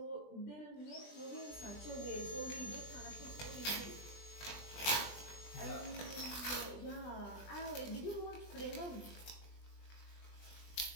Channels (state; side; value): late; right; 20 ms